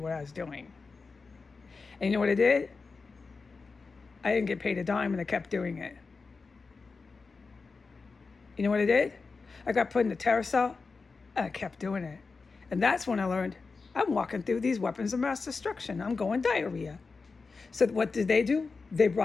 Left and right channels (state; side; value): quieter; right; 4.4 dB